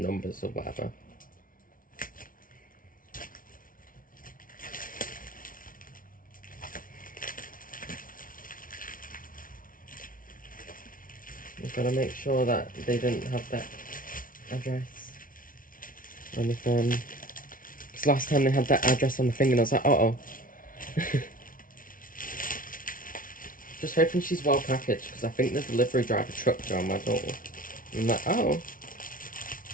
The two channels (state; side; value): late; right; 0.39 ms